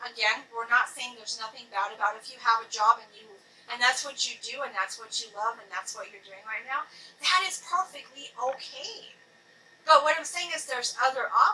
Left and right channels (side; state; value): both; identical; correlation 1.00